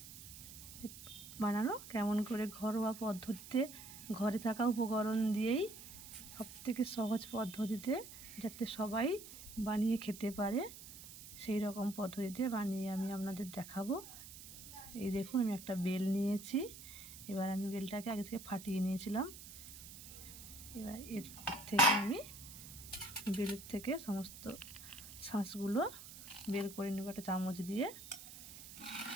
বানানো কেমন করে ঘরোয়া পদ্ধতিতে ঘরে থাকা উপকরণ দিয়েই সবথেকে সহজ পদ্ধতিতে যাতে সবাই বানিয়ে খেতে পারে সেই রকম পদ্ধতিতে বানিয়ে আমি আপনাদের দেখাবো। এই দেখুন, আমি একটা বেল নিয়েছি। এবার আমি বেলটাকে আগে থেকে ফাটিয়ে নিয়েছিলাম। এবার এর থেকে আমি বেলের থেকে সমস্ত শাঁসগুলো বের করে নেব একটা চামচ দিয়ে।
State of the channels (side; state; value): right; noise; hiss, 14 dB below the sound